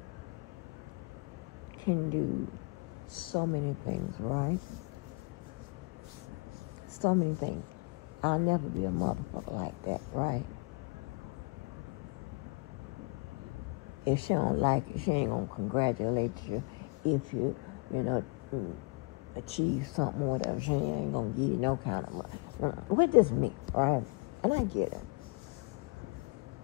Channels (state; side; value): quieter; right; 29.4 dB